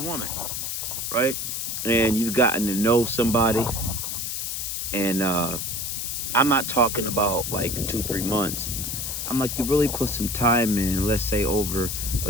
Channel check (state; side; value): noise; left; hiss, 3 dB below the sound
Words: woman, right? And you've gotten to know somebody, and I'm not talking about like 2, 3 months. I'm like, you really put some time in, let's say over